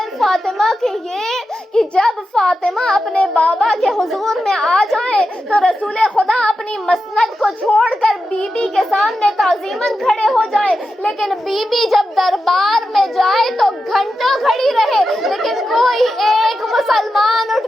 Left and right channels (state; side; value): normal; both; correlation 0.90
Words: فاطمہ کے یہ کہ جب فاطمہ اپنے بابا کے حضور میں آ جائیں تو رسول خدا اپنی مسند کو چھوڑ کر بی بی کے سامنے تعظیماً کھڑے ہو جائیں، لیکن بی بی جب دربار میں جائے تو گھنٹوں کھڑی رہے، لیکن کوئی ایک مسلمان اٹھ